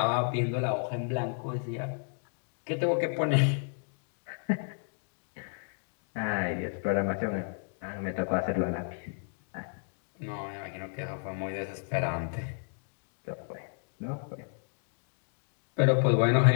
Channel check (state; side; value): silent; right; 56 dB below the other